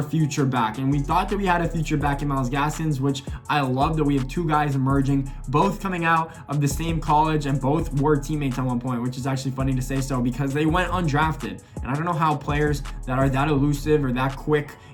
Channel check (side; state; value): both; identical; correlation 1.00